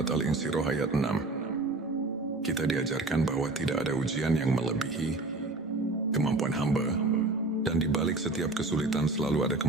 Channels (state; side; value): quieter; left; 3.2 dB